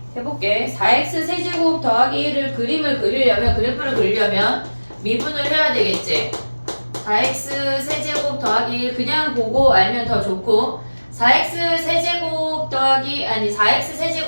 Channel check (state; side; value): inverted; both; correlation -1.00